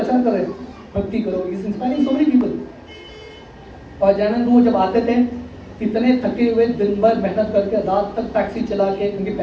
कर रहे हैं, भक्ति करो, is inspiring so many people. और जयानंद वो जब आते थे, इतने थके हुए, दिन भर मेहनत करके, रात तक टैक्सी चला के, क्योंकि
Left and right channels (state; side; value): identical; both; correlation 1.00